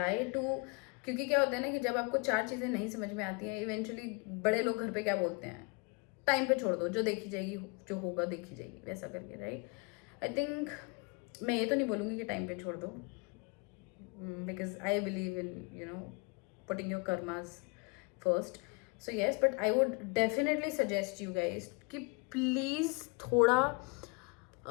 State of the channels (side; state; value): right; quieter; 30.4 dB